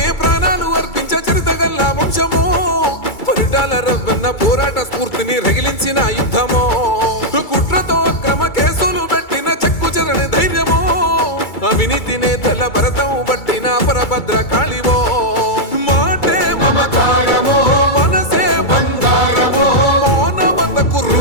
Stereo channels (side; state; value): right; late; 2.3 ms